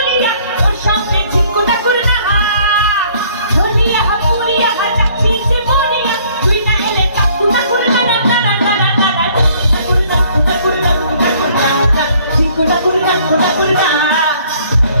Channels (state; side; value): inverted; both; correlation -0.60